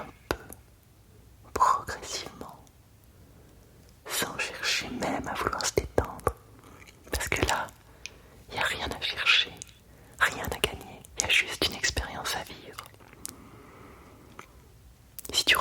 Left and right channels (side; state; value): both; identical; correlation 1.00